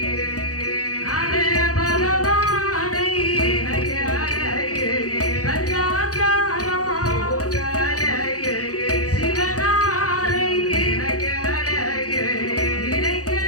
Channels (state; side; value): late; right; 0.67 ms